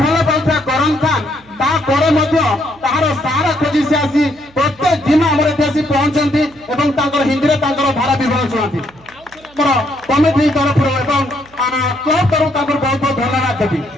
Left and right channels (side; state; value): right; noise; hum, 28 dB below the sound